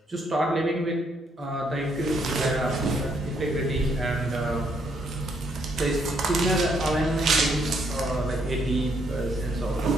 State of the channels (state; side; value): normal; both; correlation 0.72